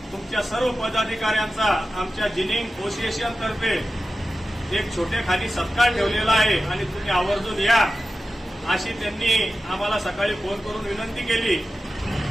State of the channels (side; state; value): both; normal; correlation 0.93